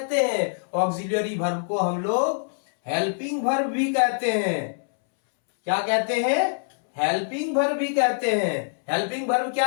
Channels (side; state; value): right; silent; 62 dB below the other